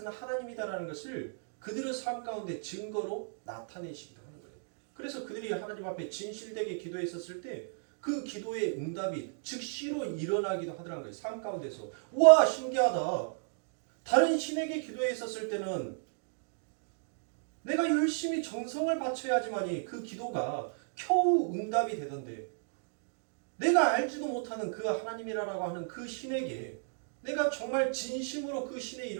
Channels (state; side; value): silent; left; digital silence